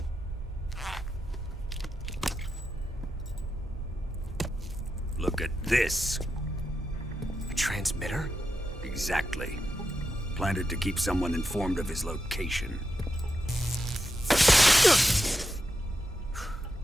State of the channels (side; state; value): both; normal; correlation 0.87